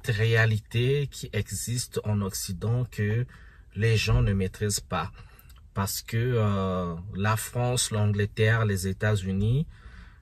réalité qui existe en Occident que les gens ne maîtrisent pas. Parce que la France, l'Angleterre, les États-Unis,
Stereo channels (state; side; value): identical; both; correlation 1.00